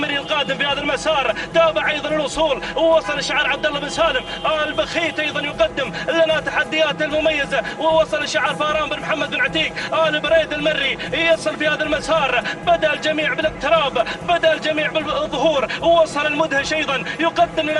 القادم في هذا المسار. تابع أيضا الوصول ووصل شعار عبد الله بن سالم البخيت أيضا يقدم لنا تحديات المميزة. ووصل شعار فاران بن محمد بن عتيق آل بريد المري يصل في هذا المسار. بدأ الجميع بالاقتراب، بدأ الجميع بالظهور. ووصل المدهش أيضا يقدم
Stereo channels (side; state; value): both; identical; correlation 1.00